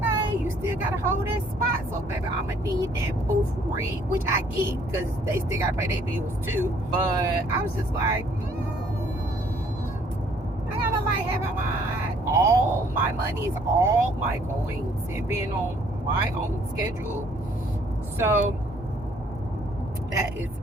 you still gotta hold that spot, so baby, I'ma need that booth rent, which I get because they still gotta pay their bills too. But I was just like, I gotta like having all my monies, all my coins, and being on my own schedule So that is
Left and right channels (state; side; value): normal; both; correlation 0.62